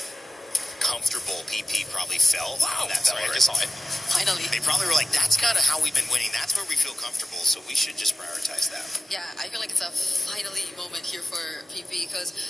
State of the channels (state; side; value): normal; both; correlation 0.94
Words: comfortable PP probably felt. Wow, on that sorry, I turret. just saw it. Finally. They probably were like, "That's kind of how we've been winning. That's where we feel comfortable. So we should just prioritize that." Yeah, I feel like it's a finally moment here for PP because